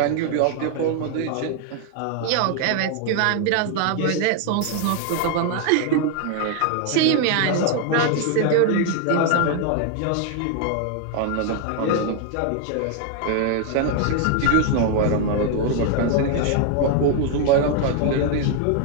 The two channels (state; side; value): different; both; correlation 0.00